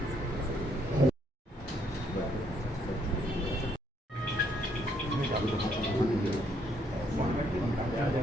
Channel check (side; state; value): both; normal; correlation 0.70